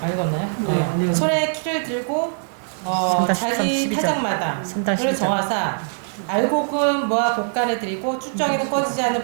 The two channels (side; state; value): left; silent; digital silence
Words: 읽었나요? 네, 손에 키를 들고 자기 타작마다를 정하사 알곡은 모아 곡간에 드리고 쭉정이는 꺼지지 않는